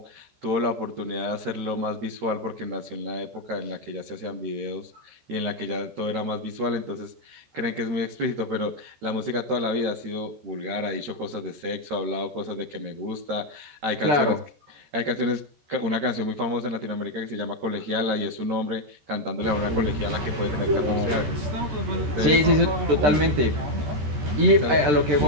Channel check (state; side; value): late; left; 13 ms